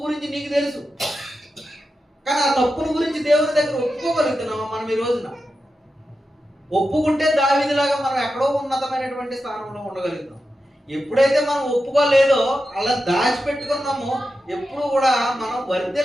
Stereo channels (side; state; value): both; normal; correlation 0.90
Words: గురించి నీకు తెలుసు, కానీ ఆ తప్పుల గురించి దేవుని దగ్గర ఒప్పుకోగలుగుతున్నామా మనం ఈ రోజున? ఒప్పుకుంటే దావీదులాగా మనం ఎక్కడో ఉన్నతమైనటువంటి స్థానంలో ఉండగలుగుతాం. ఎప్పుడైతే మనం ఒప్పుకోలేదో, అలా దాచిపెట్టుకున్నామో, ఎప్పుడు కూడా మనం